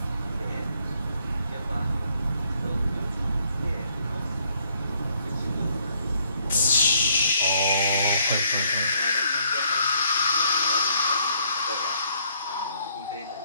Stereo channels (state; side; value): inverted; both; correlation -0.68